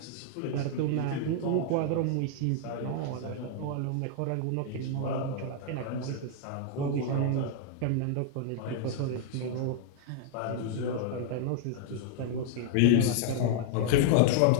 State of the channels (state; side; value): different; both; correlation -0.01